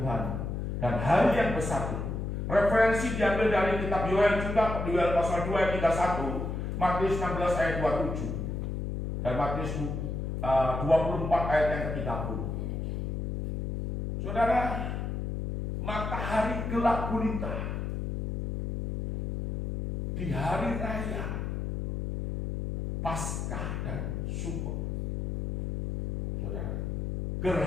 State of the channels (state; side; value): noise; left; hum, 2 dB below the sound